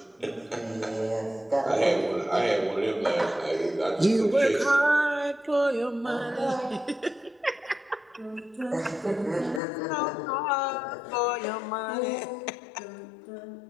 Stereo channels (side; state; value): right; drops out; at 9.6 s